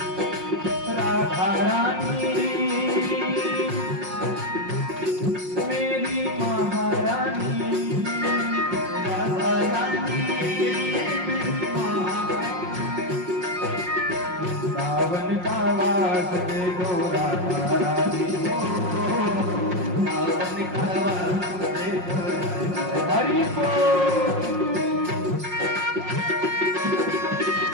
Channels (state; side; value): late; left; 5.5 ms